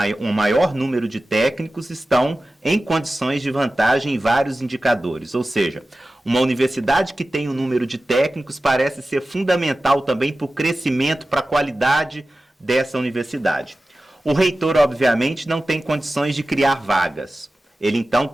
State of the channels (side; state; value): both; normal; correlation 0.95